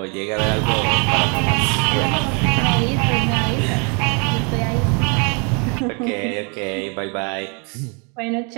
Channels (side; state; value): left; quieter; 34.9 dB